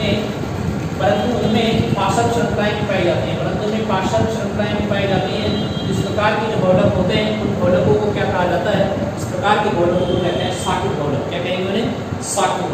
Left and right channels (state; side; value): identical; both; correlation 1.00